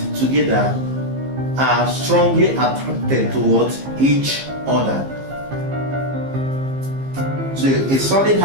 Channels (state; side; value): late; left; 15 ms